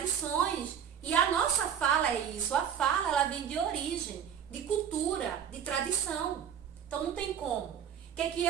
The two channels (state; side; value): quieter; left; 8.4 dB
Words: E a nossa fala é isso, a fala ela vem de origem, de cultura, de tradição. Então não tem como. O que é que